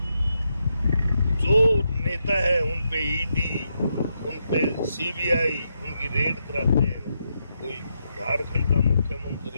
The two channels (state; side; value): inverted; both; correlation -0.83